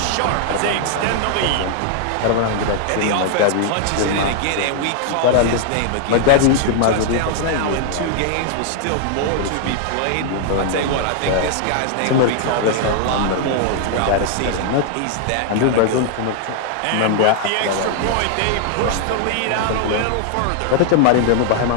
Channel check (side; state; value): both; different; correlation 0.00